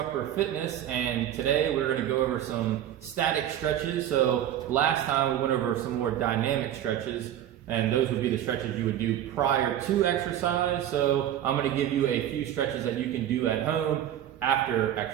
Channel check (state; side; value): quieter; left; 11.4 dB